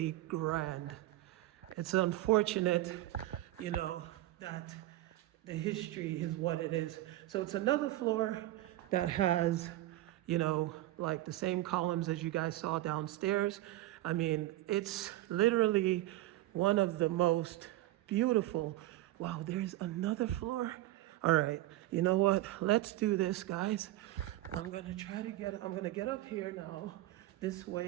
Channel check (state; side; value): quieter; left; 16.1 dB